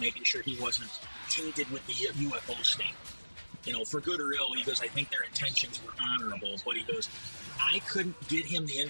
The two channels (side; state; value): both; inverted; correlation -1.00